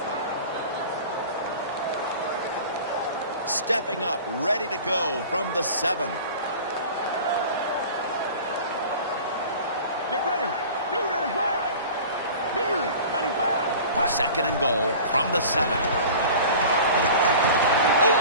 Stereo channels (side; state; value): both; inverted; correlation -0.40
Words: Stepping up, ready to go from the 7. Get ready. Blue 95. Blue 95. Second and goal from the 7. Over